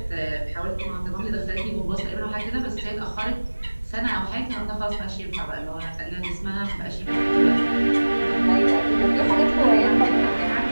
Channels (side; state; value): both; inverted; correlation -1.00